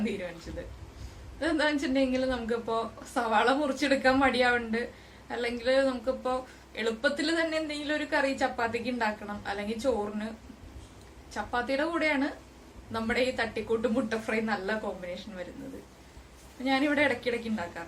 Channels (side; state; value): both; identical; correlation 1.00